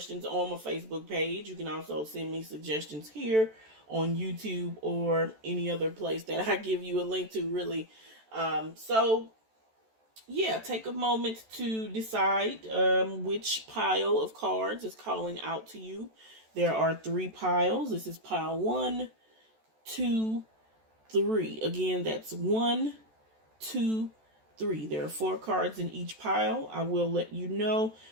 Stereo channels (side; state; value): left; late; 14 ms